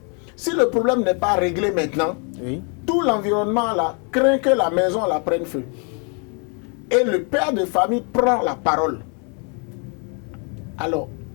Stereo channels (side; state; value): right; quieter; 37.7 dB